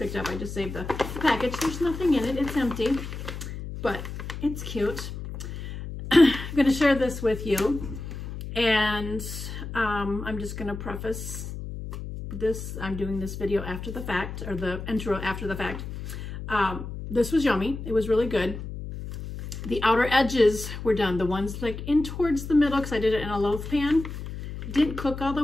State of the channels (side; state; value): left; noise; hum, 8 dB below the sound